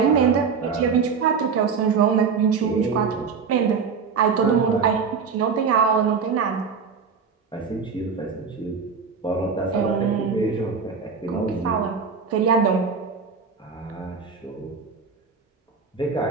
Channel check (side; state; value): left; quieter; 5.7 dB